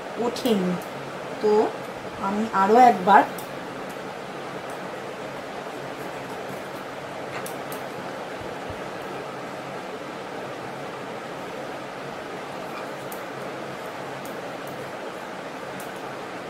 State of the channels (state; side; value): identical; both; correlation 1.00